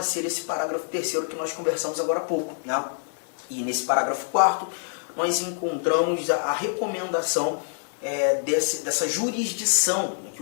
esse parágrafo 3º que nós conversamos agora há pouco, né? E nesse parágrafo 4º nós encontramos a recomendação dessa jurisdição, né,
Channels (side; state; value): right; silent; digital silence